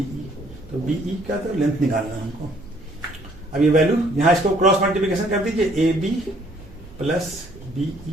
तो BE का तो लेंथ निकालना है हमको। अब ये वैल्यू यहां इसको क्रॉस मल्टीप्लिकेशन कर दीजिए, AB plus BE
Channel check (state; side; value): noise; right; rumble, 20 dB below the sound